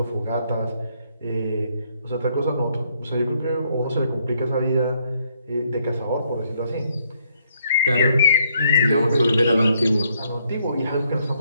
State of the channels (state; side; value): inverted; both; correlation -0.71